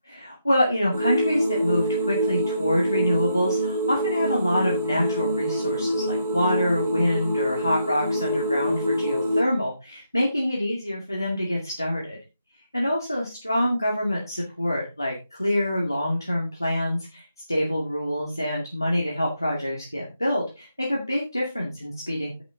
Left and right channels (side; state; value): both; inverted; correlation -0.81